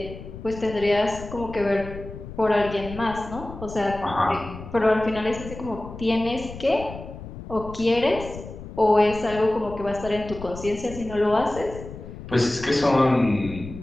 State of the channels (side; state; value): left; noise; rumble, 12 dB below the sound